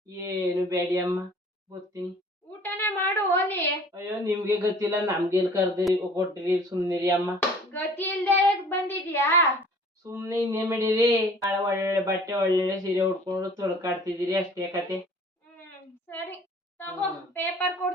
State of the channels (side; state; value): both; normal; correlation 0.50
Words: ಏನು ಬೇಡಿ ಅಮ್ಮ, ಬರ್ತೀನಿ. ಊಟನೇ ಮಾಡು ಹೋಲಿ. ಅಯ್ಯೋ ನಿಮ್ಗೆ ಗೊತ್ತಿಲ್ಲ, ನಮ್ಗೆಲ್ ಕರ್ದಿರಿ ಕೊಟ್ಟಿರಿ, ಸುಮ್ನಿರಿ ಅಮ್ಮ. ಗತಿ ಇಲ್ದೆ ಬಂದಿದ್ಯಾ? ಸುಮ್ನೆ ಇನ್ನೇ ಮಾಡಿರಿ. ಒಳ್ಳೆ ಬಟ್ಟೆ ಒಳ್ಳೆ ಸೀರೆ ಉಟ್ಕೊಂಡು ತೊಳ್ಕಾಡ್ತಿದ್ದೀರಿ, ಅಷ್ಟೇ ಕತೆ. ಸರಿ ತಗೋ, ಪೇಪರ್